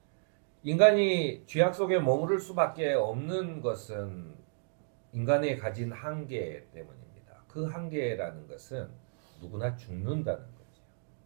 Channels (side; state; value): left; silent; digital silence